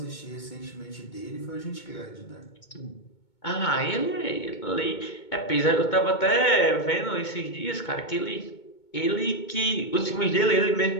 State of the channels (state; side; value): late; right; 2.2 ms